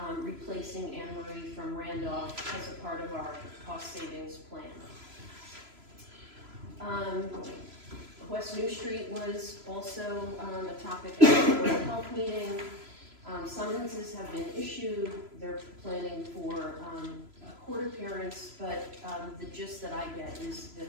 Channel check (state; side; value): late; left; 3.0 ms